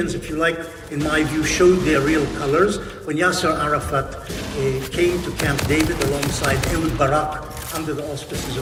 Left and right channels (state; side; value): identical; both; correlation 1.00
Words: if you like, in my view, showed their real colors, when Yasser Arafat came to Camp David alongside Ehud Barak under the auspices